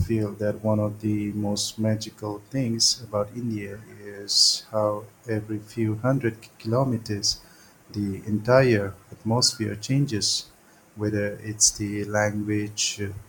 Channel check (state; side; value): identical; both; correlation 1.00